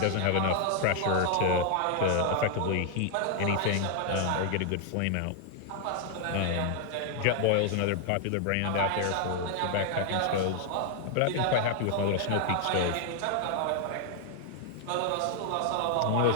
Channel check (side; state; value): both; different; correlation 0.00